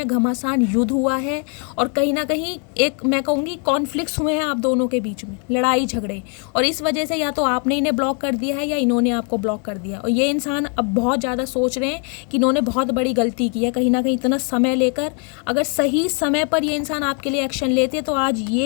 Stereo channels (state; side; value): quieter; right; 39.5 dB